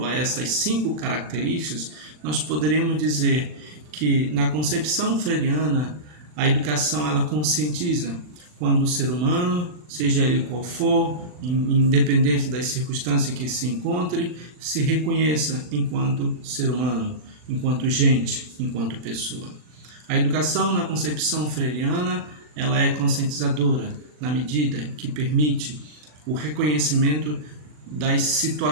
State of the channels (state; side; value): late; left; 40 ms